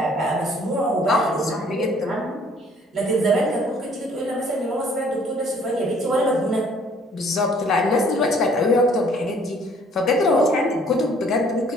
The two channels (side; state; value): both; normal; correlation 0.58